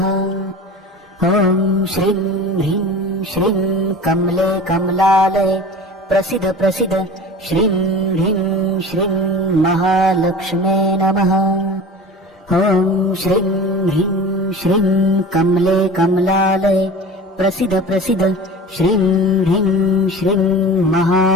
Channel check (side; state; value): both; normal; correlation 0.37